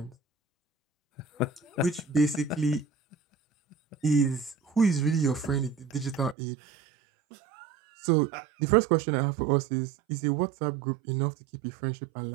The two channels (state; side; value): drops out; left; at 6.4 s